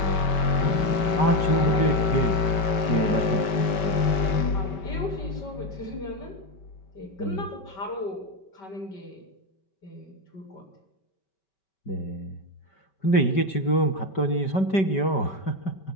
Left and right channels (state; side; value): late; right; 5.2 ms